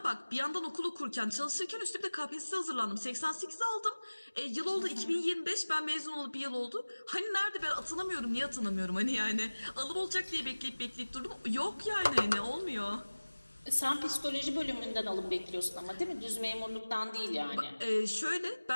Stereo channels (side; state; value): both; inverted; correlation -1.00